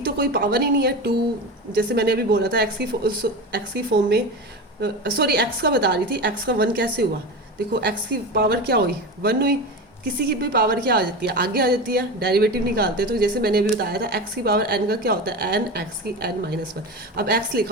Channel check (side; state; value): both; normal; correlation 0.25